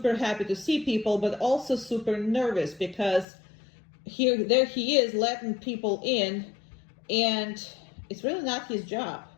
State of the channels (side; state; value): right; drops out; at 3.2 s